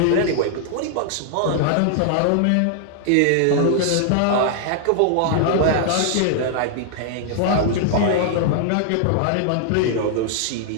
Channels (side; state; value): both; different; correlation 0.00